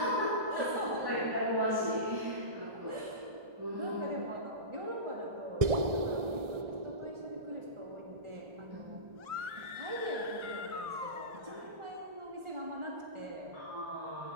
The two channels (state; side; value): late; left; 1.6 ms